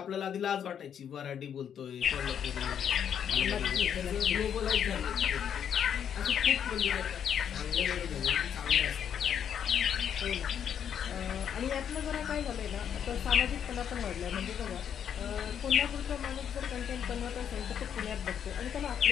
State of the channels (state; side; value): quieter; right; 8.6 dB